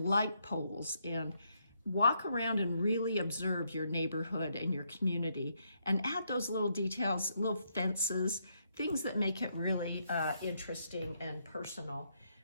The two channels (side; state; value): both; inverted; correlation -0.76